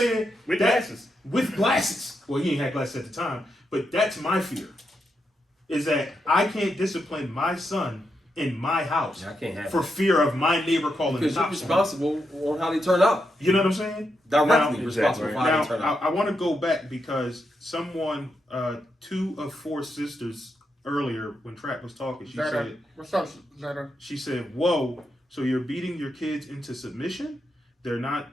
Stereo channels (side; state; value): both; normal; correlation 0.83